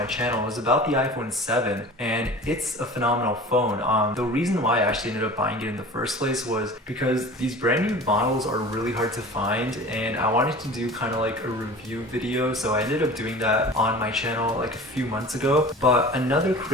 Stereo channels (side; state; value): both; normal; correlation 0.39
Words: channel. It was about the iPhone 7 and it's a phenomenal phone. The reason why I actually ended up buying it in the first place was because these brand new models are really hard to find and I wanted to do kind of like a review video, so I ended up doing that on my channel like a few months ago. But another